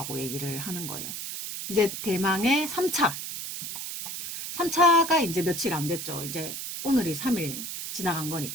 얘기를 하는 거예요. 이제 대망의 3차. 3차가 이제 며칠 안 됐죠. 이제 오늘이 3일 지나간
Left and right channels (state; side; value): noise; right; hiss, 6 dB below the sound